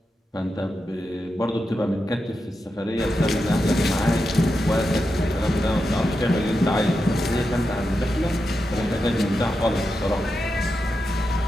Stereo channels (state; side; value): normal; both; correlation 0.88